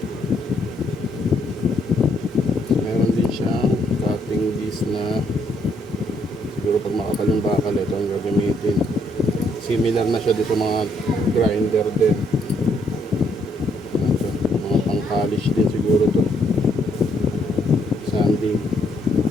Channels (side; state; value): both; normal; correlation 0.71